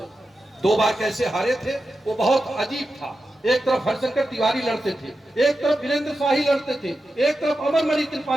2 बार कैसे हारे थे वो बहुत अजीब था। एक तरफ हरिशंकर तिवारी लड़ते थे, एक तरफ वीरेंद्र शाही लड़ते थे, एक तरफ अमरमणि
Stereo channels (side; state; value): both; normal; correlation 0.91